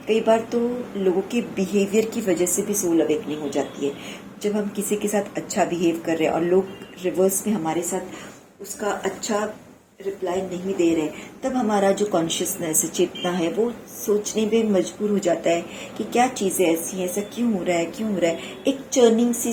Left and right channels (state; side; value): identical; both; correlation 1.00